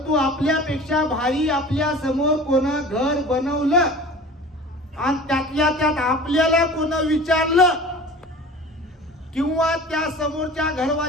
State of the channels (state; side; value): normal; both; correlation 0.40